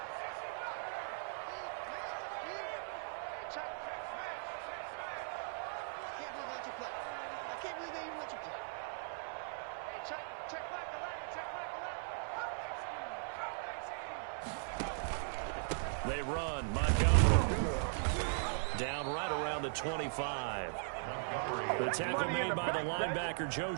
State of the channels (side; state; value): left; silent; 52 dB below the other